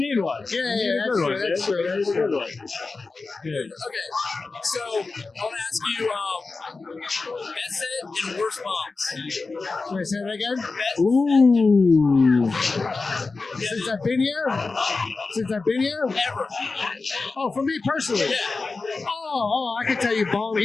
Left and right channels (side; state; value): right; quieter; 3.9 dB